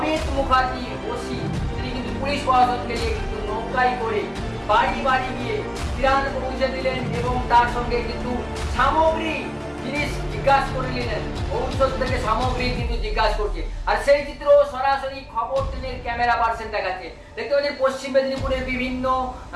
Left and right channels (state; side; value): identical; both; correlation 1.00